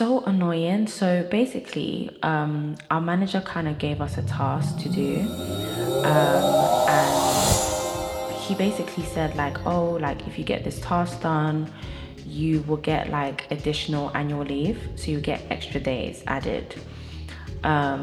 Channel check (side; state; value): both; identical; correlation 1.00